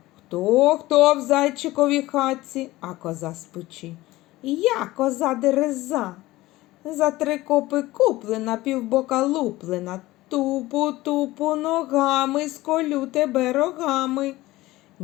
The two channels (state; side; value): quieter; right; 18.2 dB